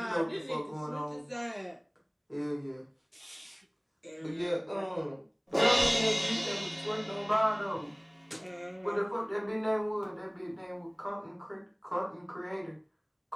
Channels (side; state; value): both; identical; correlation 1.00